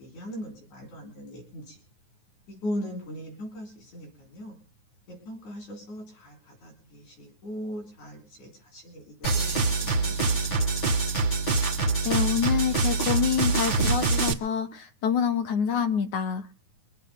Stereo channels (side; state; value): right; late; 9.5 ms